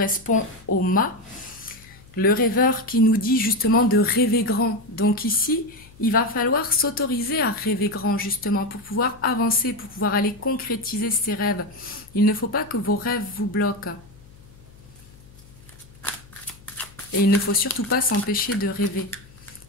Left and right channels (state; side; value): noise; left; hum, 23 dB below the sound